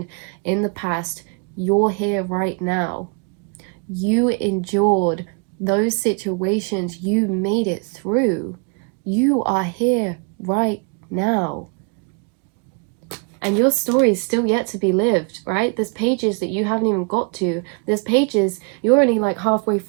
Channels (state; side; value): quieter; left; 35.7 dB